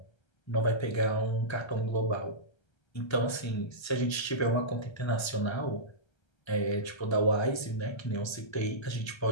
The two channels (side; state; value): right; late; 1.3 ms